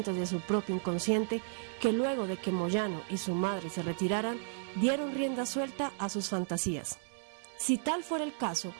de su propio inconsciente que luego de que Moyano y su madre se retiraran, dieron rienda suelta a sus fantasías. Si tal fuera el caso,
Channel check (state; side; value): silent; left; digital silence